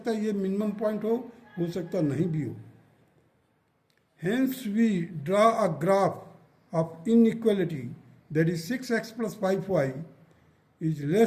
है ये minimum point हो सकता नहीं भी हो. Hence we draw a graph of inequality, that is 6x plus 5y is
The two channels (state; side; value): identical; both; correlation 1.00